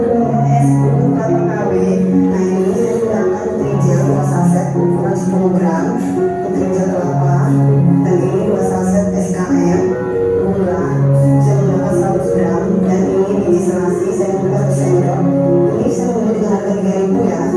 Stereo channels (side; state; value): both; identical; correlation 1.00